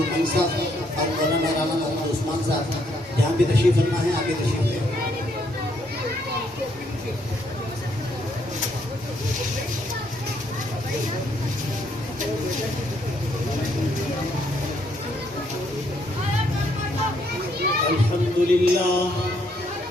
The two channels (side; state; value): both; normal; correlation 0.71